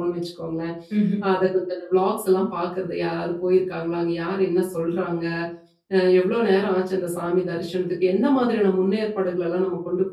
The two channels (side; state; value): both; identical; correlation 1.00